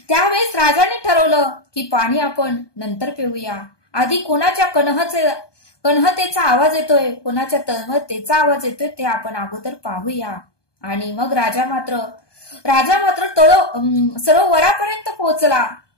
त्यावेळेस राजाने ठरवलं की पाणी आपण नंतर पिऊया, आधी कोणाच्या कणहतेचा आवाज येतोय, कोणाच्या तळमळतेचा आवाज येतोय ते आपण अगोदर पाहूया. आणि मग राजा मात्र सरोवरापर्यंत पोहोचला,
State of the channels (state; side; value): late; right; 1.2 ms